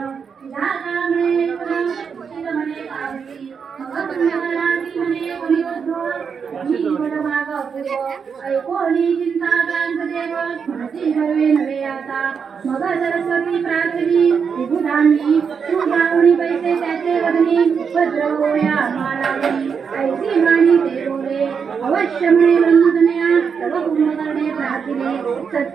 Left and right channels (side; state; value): left; quieter; 6.3 dB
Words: तुझा कामणे उशीर म्हणे कावडी मग पुण्यकराची म्हणे कोणी उद्धव ही बड माग अपूर्व ऐकोनी चिंता क्रांत देव म्हणती हरवे नवे आता मग सरस्वती प्रार्थनी विभुधांनी सुधावणी पैसे त्याचे वदनी भद्र होया मालावणी ऐसी माणी ते बोले अवश्य म्हणे ब्रह्मजनया तव कुंभकर्णे प्रार्थिले